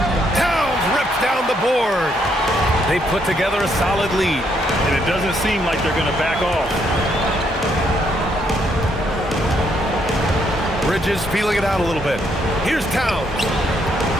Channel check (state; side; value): normal; both; correlation 0.73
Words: Towns rips down the board. They put together a solid lead. And it doesn't seem like they're going to back off. Bridges feeling it out a little bit. Here's Towns.